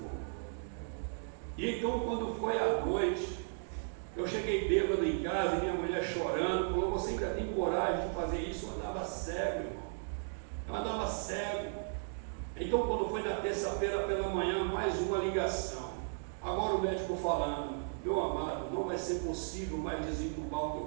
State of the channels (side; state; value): left; silent; digital silence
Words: E então, quando foi à noite, eu cheguei bêbado em casa e minha mulher chorando, falou: você ainda tem coragem de fazer isso? Eu andava cego, irmão. Eu andava cego. Então, quando foi na terça-feira pela manhã, mais uma ligação. Agora o médico falando: meu amado, não vai ser possível mais desentubar o